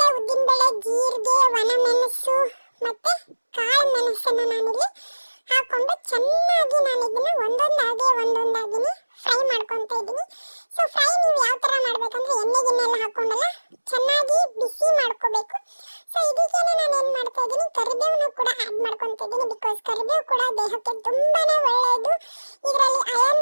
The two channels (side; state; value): both; inverted; correlation -1.00